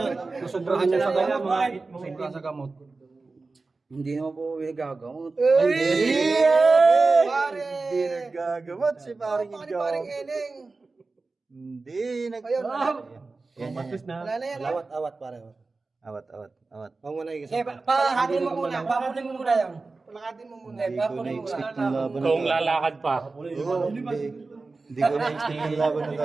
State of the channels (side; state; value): left; quieter; 3.8 dB